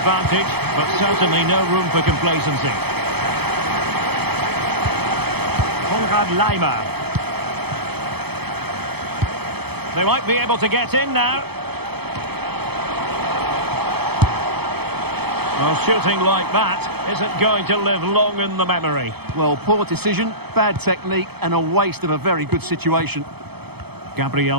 but certainly no room for complacency. Konrad Laimer. They might be able to get in now. Well, shooting like that isn't going to live long in the memory. Well, poor decision, bad technique, and a waste of a very good situation. Gabriel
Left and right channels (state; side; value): late; left; 0.97 ms